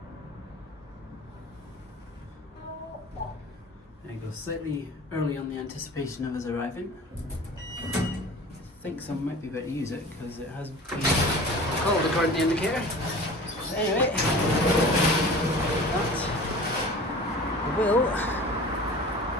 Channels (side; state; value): both; normal; correlation 0.39